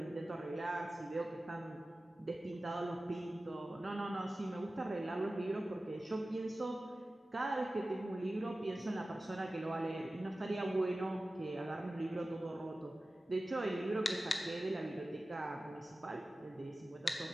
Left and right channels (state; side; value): normal; both; correlation 0.95